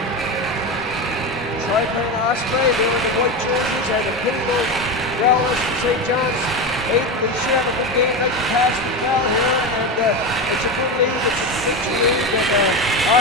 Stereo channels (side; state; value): both; normal; correlation 0.19